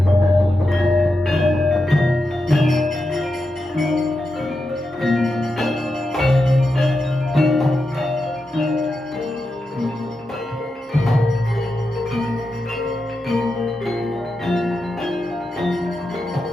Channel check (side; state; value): both; normal; correlation 0.88